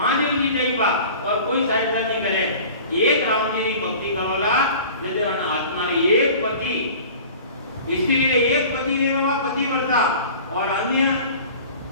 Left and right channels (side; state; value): both; inverted; correlation -0.42